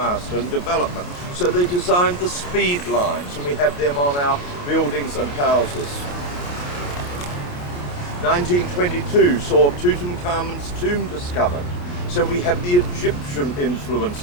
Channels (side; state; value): right; late; 28 ms